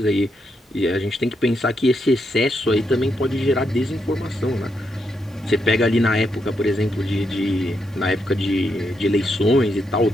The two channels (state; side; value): normal; both; correlation 0.81